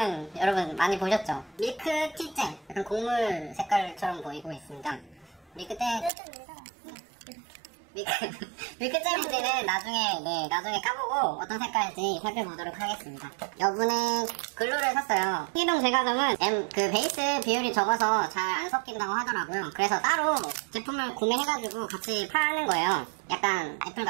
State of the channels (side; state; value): left; drops out; at 6.1 s